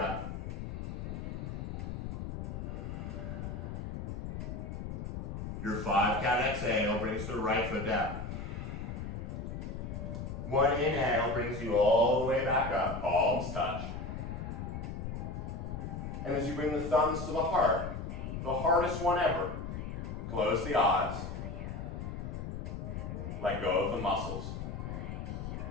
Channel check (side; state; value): left; noise; rumble, 5 dB below the sound